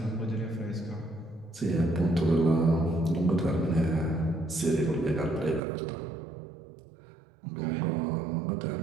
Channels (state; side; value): drops out; left; at 5.6 s